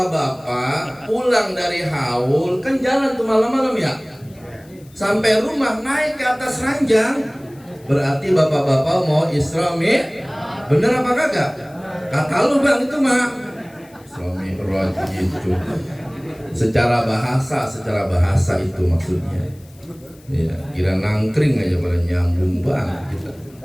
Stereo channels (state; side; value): noise; left; hiss, 28 dB below the sound